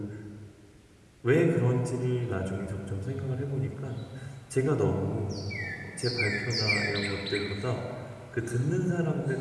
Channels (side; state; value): both; identical; correlation 1.00